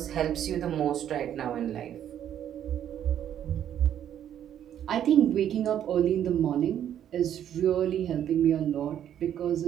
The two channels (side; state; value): left; quieter; 10.2 dB